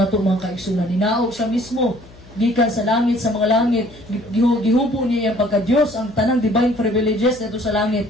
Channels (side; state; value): left; noise; hum, 22 dB below the sound